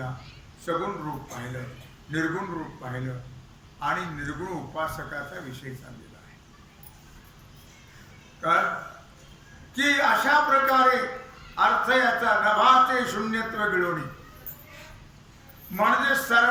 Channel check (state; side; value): identical; both; correlation 1.00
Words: सगुण रूप पाहिलं, निर्गुण रूप पाहिलं, आणि निर्गुण उपासकाचा विषय चाललेला आहे. का की अशा प्रकारे अर्थ याचा नभाचे शून्यत्व गिळवणी, म्हणजे